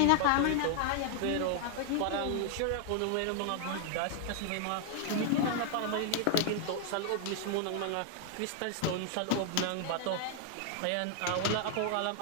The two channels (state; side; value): different; both; correlation 0.00